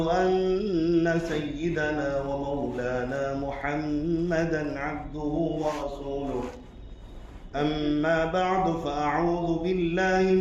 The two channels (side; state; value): both; identical; correlation 1.00